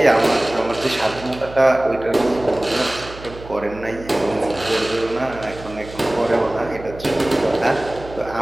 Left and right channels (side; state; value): right; noise; hum, 16 dB below the sound